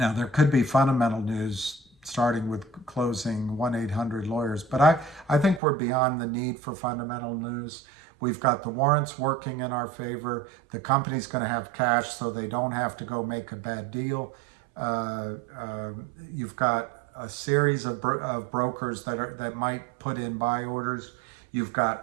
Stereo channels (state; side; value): drops out; left; at 5.6 s